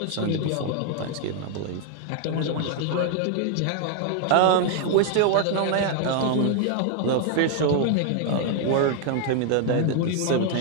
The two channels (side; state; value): both; different; correlation 0.00